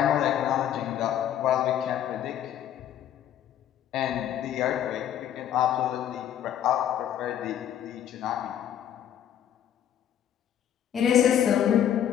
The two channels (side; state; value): right; quieter; 10.3 dB